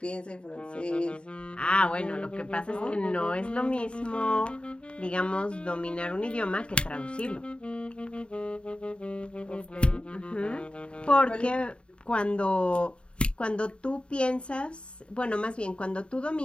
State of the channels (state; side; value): late; right; 0.055 ms